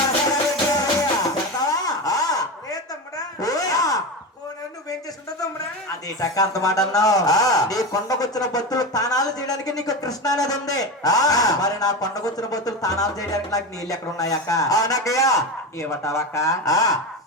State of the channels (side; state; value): both; normal; correlation 0.20